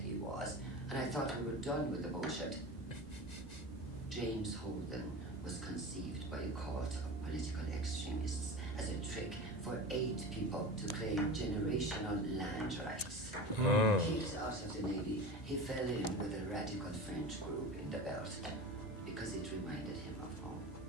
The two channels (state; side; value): normal; both; correlation 0.30